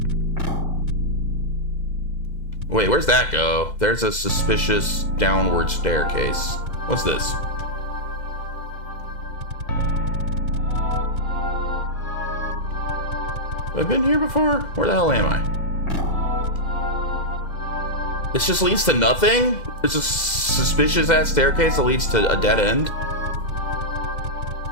Wait, where's that go? There's a suspicious downward staircase. What's this? Have I been here before? Where the hell am I? This just leads to nothing? There's a suspicious ass staircase that leads to a dead end?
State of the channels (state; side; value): late; right; 2.0 ms